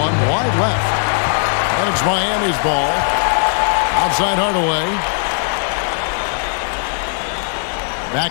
wide left. And it's Miami's ball. Outside Hardaway.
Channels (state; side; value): silent; right; digital silence